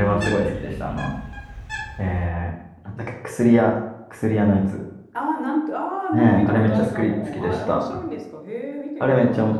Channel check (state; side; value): identical; both; correlation 1.00